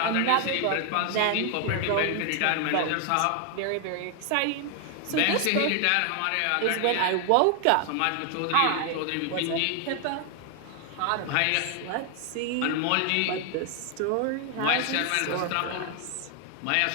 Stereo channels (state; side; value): different; both; correlation 0.00